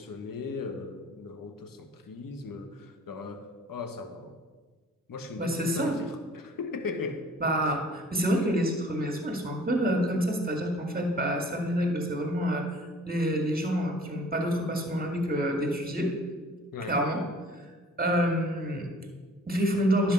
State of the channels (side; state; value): both; normal; correlation 0.52